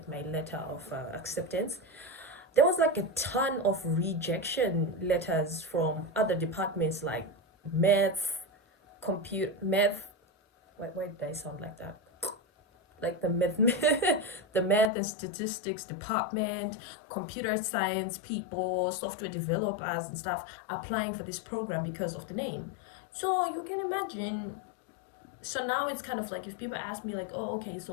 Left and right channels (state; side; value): drops out; right; at 14.9 s